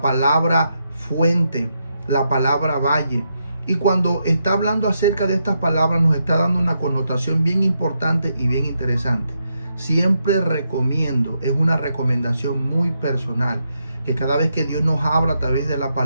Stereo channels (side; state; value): both; inverted; correlation -0.82